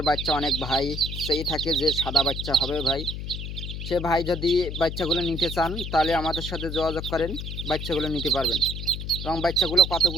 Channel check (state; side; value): noise; left; hum, 6 dB below the sound